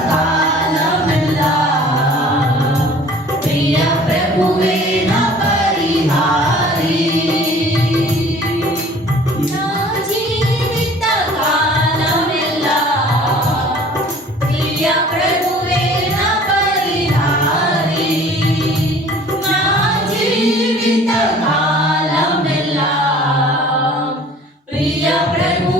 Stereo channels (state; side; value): normal; both; correlation 0.49